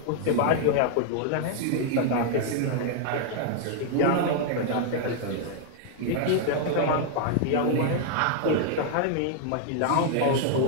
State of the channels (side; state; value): both; different; correlation -0.01